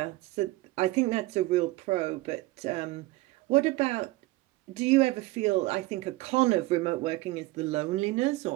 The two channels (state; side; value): quieter; left; 19.9 dB